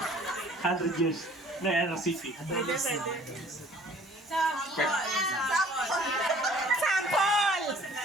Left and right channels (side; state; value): both; normal; correlation 0.54